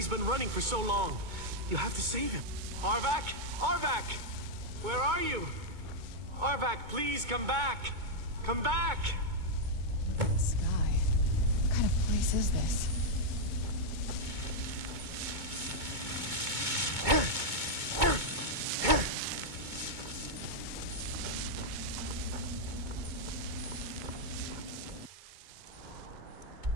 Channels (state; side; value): late; left; 2.2 ms